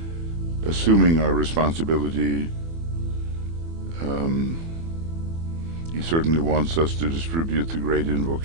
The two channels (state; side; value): late; left; 24 ms